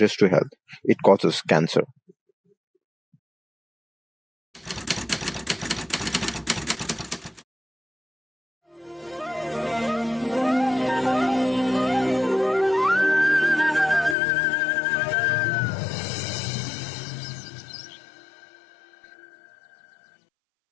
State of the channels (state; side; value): drops out; right; at 14.2 s